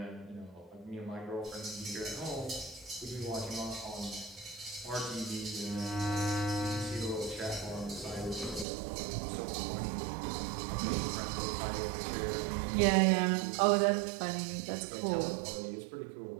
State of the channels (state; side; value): drops out; left; at 8.7 s